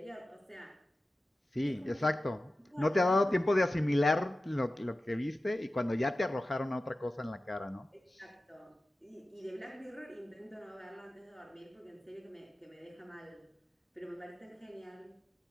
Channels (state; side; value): normal; both; correlation 0.95